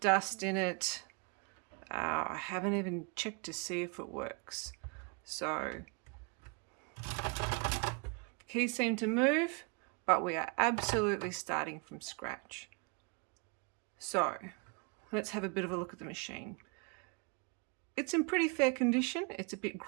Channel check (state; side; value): quieter; left; 33.9 dB